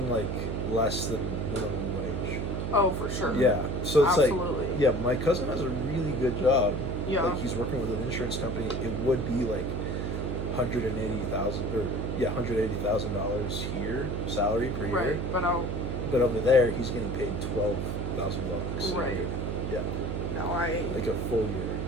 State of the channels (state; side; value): noise; right; hum, 2 dB below the sound